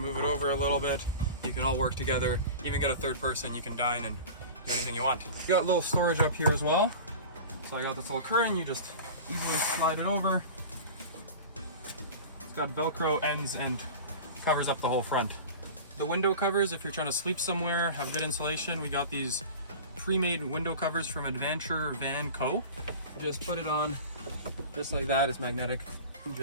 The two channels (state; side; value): inverted; both; correlation -0.34